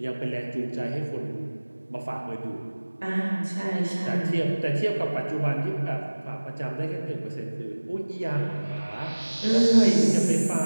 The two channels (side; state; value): both; inverted; correlation -1.00